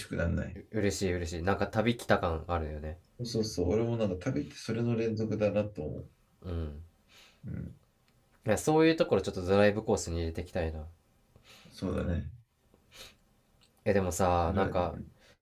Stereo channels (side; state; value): both; identical; correlation 1.00